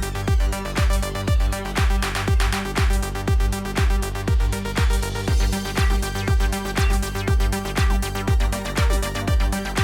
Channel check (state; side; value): identical; both; correlation 1.00